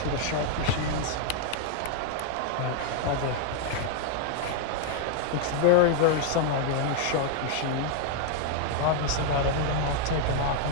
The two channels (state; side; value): different; both; correlation 0.00